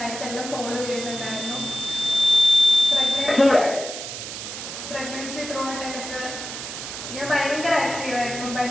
ഫോളോ ചെയ്യുന്നുണ്ടായിരുന്നു. പ്രഗ്നൻസി ത്രൂ ഔട്ട് എനിക്ക് ഞാൻ ഭയങ്കര ആക്റ്റീവായിരുന്നു,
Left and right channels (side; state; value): right; noise; hiss, 8 dB below the sound